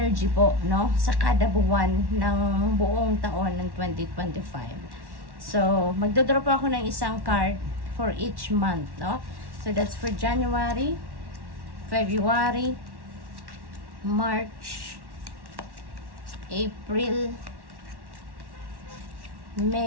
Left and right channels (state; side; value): late; left; 1.1 ms